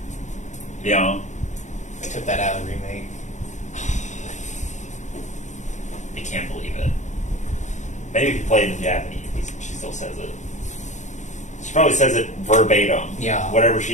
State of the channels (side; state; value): right; late; 0.35 ms